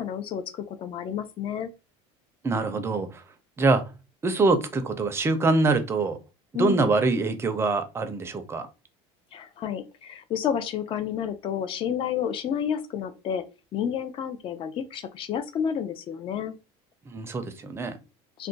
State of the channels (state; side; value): normal; both; correlation 0.53